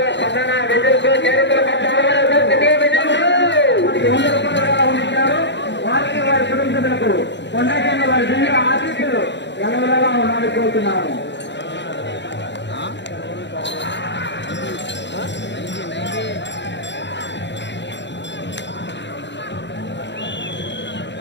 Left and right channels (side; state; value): right; late; 0.52 ms